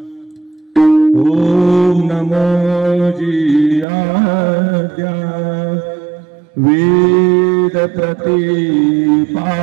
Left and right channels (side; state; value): left; drops out; at 3.9 s